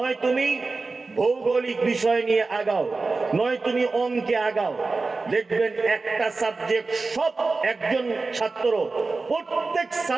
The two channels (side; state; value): left; quieter; 3.8 dB